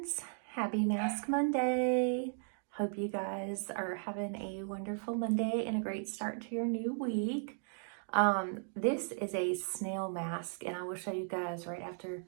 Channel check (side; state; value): left; silent; 54 dB below the other